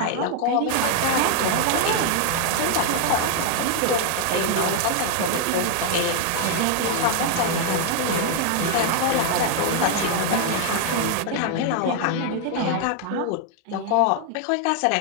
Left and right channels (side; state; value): both; different; correlation 0.00